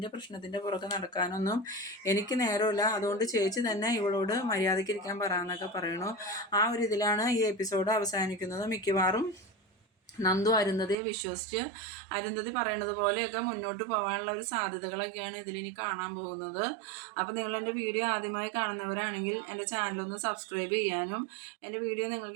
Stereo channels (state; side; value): drops out; left; at 11.0 s